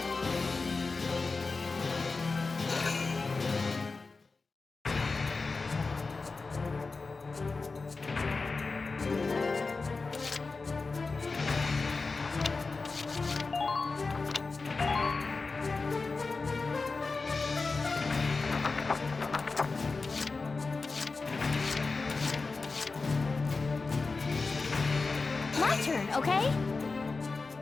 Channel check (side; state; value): right; quieter; 4.0 dB